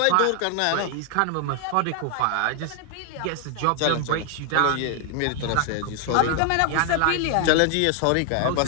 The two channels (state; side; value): different; both; correlation 0.00